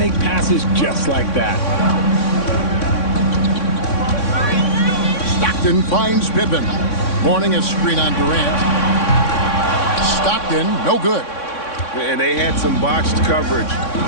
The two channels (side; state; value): right; late; 3.6 ms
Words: passes just like that. Stockton finds Pippen. Morning a screen on Durant. Stockton, no good. And they had some botched coverage